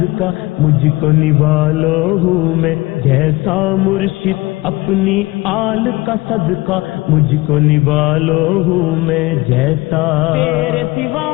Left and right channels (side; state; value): right; quieter; 21.3 dB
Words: مجھ کو نوالو ہوں میں جیسا مرشد اپنی آل کا صدقہ مجھ کو نوالو ہوں میں جیسا تیرے سوا